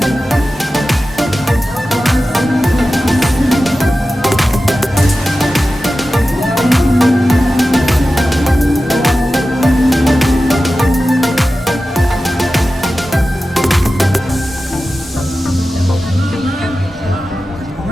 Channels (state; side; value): normal; both; correlation 0.94